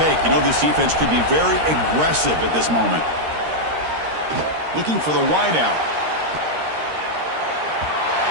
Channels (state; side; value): late; left; 13 ms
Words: You know this defense could be very aggressive at this moment. Looking for the wideout.